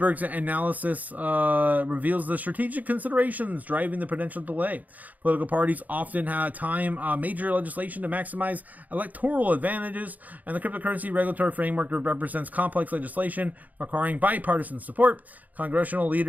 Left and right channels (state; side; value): late; left; 0.079 ms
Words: analysis reveals the strategic considerations driving the potential delay. Political parties often time major legislation to maximize electoral advantages, and the cryptocurrency regulatory framework represents complex legislation requiring bipartisan support. Congressional